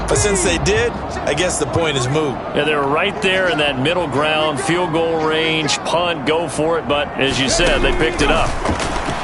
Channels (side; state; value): both; identical; correlation 1.00